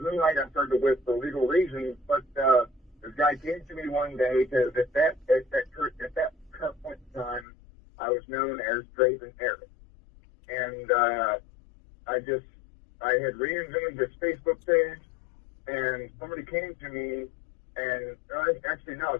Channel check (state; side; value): drops out; right; at 7.5 s